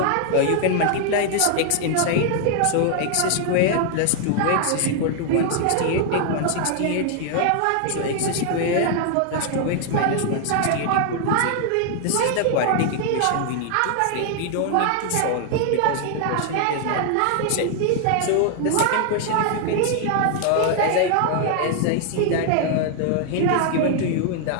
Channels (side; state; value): both; different; correlation 0.00